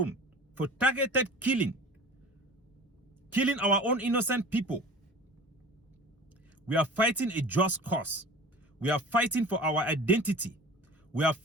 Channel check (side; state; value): both; normal; correlation 0.40